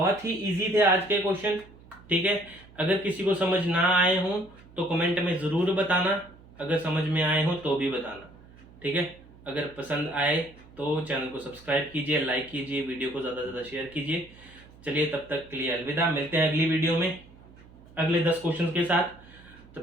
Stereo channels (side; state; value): right; noise; hum, 23 dB below the sound